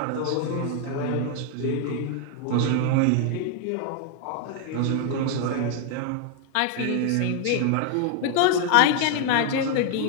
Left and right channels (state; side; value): different; both; correlation 0.00